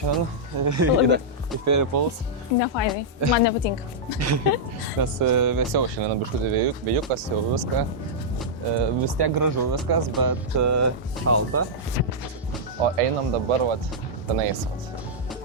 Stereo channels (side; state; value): both; normal; correlation -0.09